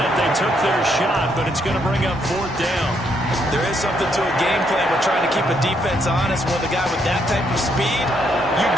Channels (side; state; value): both; normal; correlation 0.74